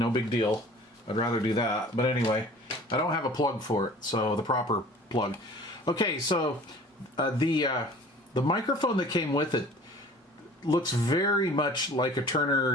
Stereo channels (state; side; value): normal; both; correlation 0.46